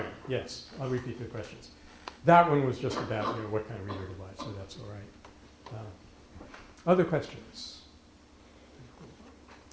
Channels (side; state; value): both; identical; correlation 1.00